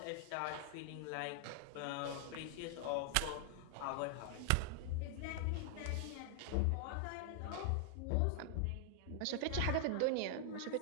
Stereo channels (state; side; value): different; both; correlation 0.00